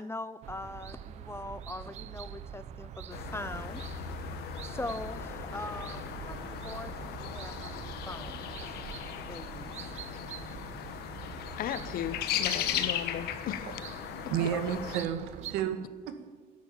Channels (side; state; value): both; normal; correlation 0.19